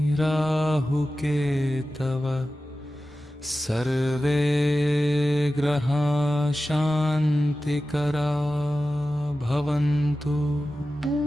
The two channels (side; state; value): both; normal; correlation 0.94